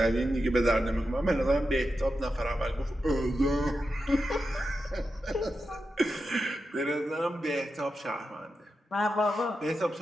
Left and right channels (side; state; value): both; normal; correlation 0.89